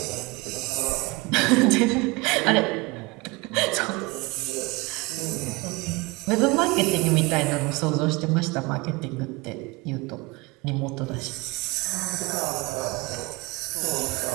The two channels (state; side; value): quieter; left; 24.5 dB